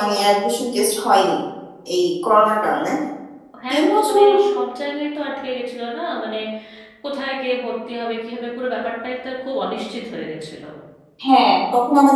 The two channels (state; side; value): identical; both; correlation 1.00